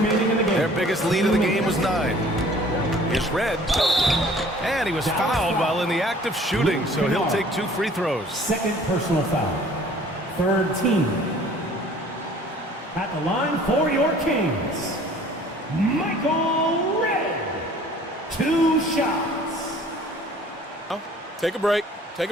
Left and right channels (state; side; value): normal; both; correlation 0.52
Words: in the game. Their biggest lead of the game was 9. Here's Red. And he was fouled while in the act of shooting, so he'll take 2 free throws. Second personal foul. Third team. At the line for your Kings, Michael Red. 2 shots. Oh, take a break. Take